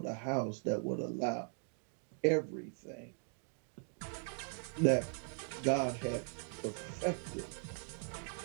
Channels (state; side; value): silent; left; 51 dB below the other